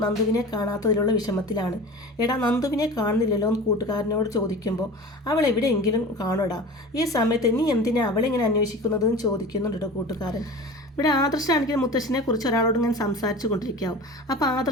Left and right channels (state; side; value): normal; both; correlation 0.36